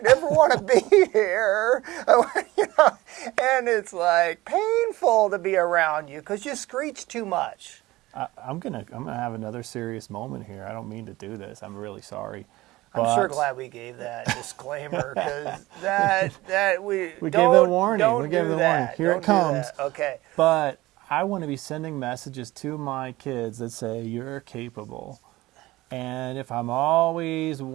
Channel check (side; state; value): left; quieter; 18.7 dB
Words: never want to be here. You know, and it's like painful to be around you because you screech too much. I'm gonna have another serious moment here. I don't mean to do this. I'm really sorry. I'm sure glad we gave that disclaimer because that we gave the warning. We gave the warning. Here don't it comes. Okay. But I want to be sending messages to my kids that say you're capable. And if I'm always